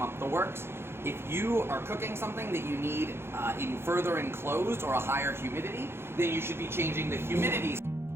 up the works. If you are cooking something that you need in further enclosed or a higher humidity, then you should be changing the humidity.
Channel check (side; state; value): left; late; 0.12 ms